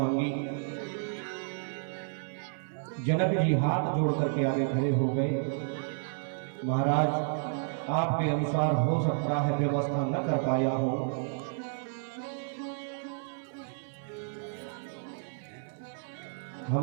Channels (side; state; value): left; silent; 57 dB below the other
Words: जनक जी हाथ जोड़ करके आगे खड़े हो गए। महाराज, आपके अनुसार हो सकता है व्यवस्था न कर पाया हो,